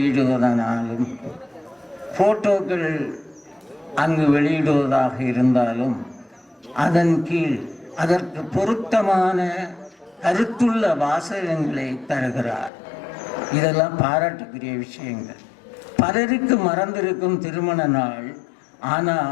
போட்டோக்கள் அங்கு வெளியிடுவதாக இருந்தாலும் அதன் கீழ் அதற்கு பொருத்தமான கருத்துள்ள வாசகங்களை தருகிறார். இதெல்லாம் பாராட்டுக்குரிய விஷயங்கள். பலருக்கு மறந்திருக்கும் திருமண நாள்,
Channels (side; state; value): right; drops out; at 12.7 s